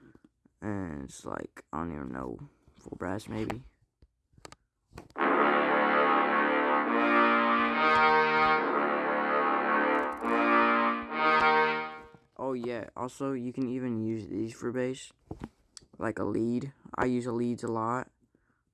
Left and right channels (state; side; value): identical; both; correlation 1.00